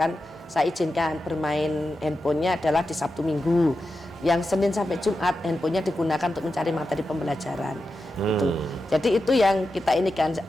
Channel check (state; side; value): normal; both; correlation 0.90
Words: saya izinkan bermain handphonenya adalah di Sabtu Minggu, yang Senin sampai Jumat handphonenya digunakan untuk mencari materi pembelajaran. Gitu. Jadi itu yang kita ini kan,